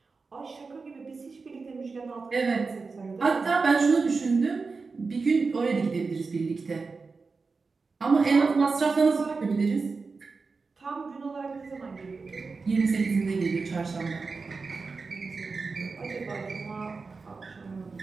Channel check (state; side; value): quieter; left; 4.4 dB